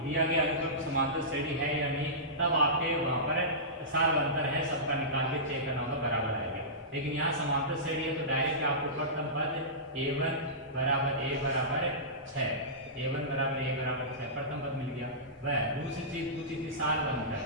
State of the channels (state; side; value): normal; both; correlation -0.19